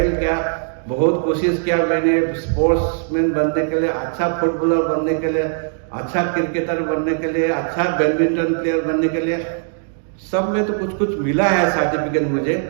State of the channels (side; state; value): left; silent; 66 dB below the other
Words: किया, बहुत कोशिश किया मैंने स्पोर्ट्समैन बनने के लिए, अच्छा फुटबॉलर बनने के लिए, अच्छा क्रिकेटर बनने के लिए, अच्छा बैडमिंटन प्लेयर बनने के लिए। सब में तो कुछ कुछ मिला है सर्टिफिकेट मुझे,